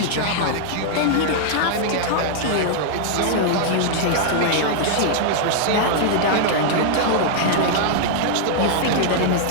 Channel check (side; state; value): both; different; correlation -0.01